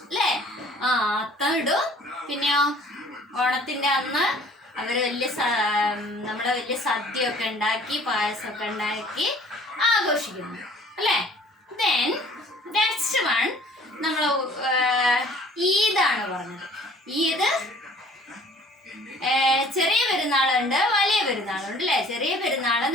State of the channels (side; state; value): both; normal; correlation 0.52